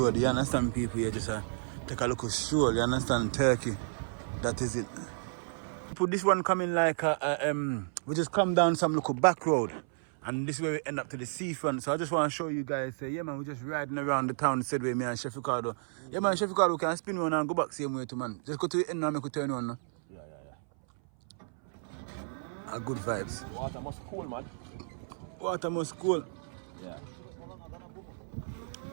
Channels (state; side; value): silent; left; 57 dB below the other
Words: You understand, people here? Just take a look at stroll. You understand, Turkey. That is it. People, this one coming like we just come down some little back road, and this is where we end up to the seafront. So I just want to show you guys. Yeah, man, we're just riding around the town. Said with me and Chef Ricardo. Yeah, man, Chef Ricardo can spin one and go back same way to man. Just go to the end now, make a turn on. Yeah. A good vibes. Water must cool, man. Water must cool. Yeah.